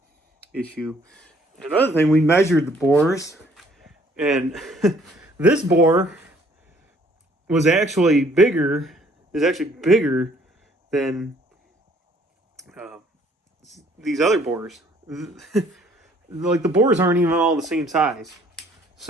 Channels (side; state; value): both; normal; correlation 0.61